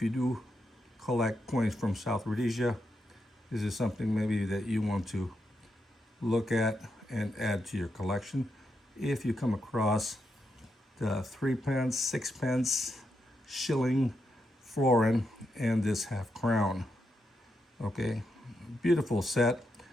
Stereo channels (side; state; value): both; normal; correlation 0.83